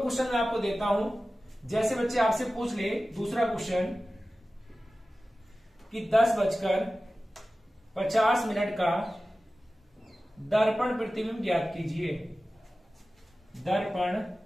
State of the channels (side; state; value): both; normal; correlation 0.96